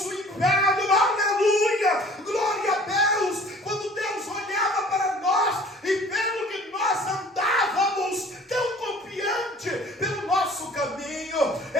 o inferno, aleluia, glória a Deus. Quando Deus olhava para nós e vendo que nós andávamos tão confiante pelo nosso caminho,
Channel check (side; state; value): both; normal; correlation 0.50